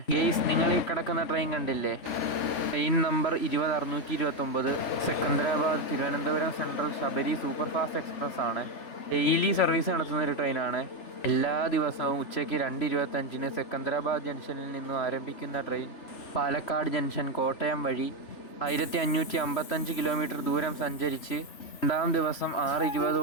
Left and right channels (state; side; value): late; right; 3.4 ms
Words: ഗെയ്സ്. നിങ്ങൾ ഈ കിടക്കുന്ന ട്രെയിൻ കണ്ടില്ലേ? Train number 20 629 Secunderabad Thiruvananthapuram central Sabari super fast express ആണ്. ഡെയിലി സർവീസ് നടത്തുന്ന ഒരു ട്രെയിനാണ്. എല്ലാ ദിവസവും ഉച്ചയ്ക്ക് 2:25 സെക്കന്ദരാബാദ് ജംഗ്ഷനിൽ നിന്നും ആരംഭിക്കുന്ന ട്രെയിൻ പാലക്കാട് ജംഗ്ഷൻ കോട്ടയം വഴി 1555 കിലോമീറ്റർ ദൂരം സഞ്ചരിച്ച് രണ്ടാം ദിവസം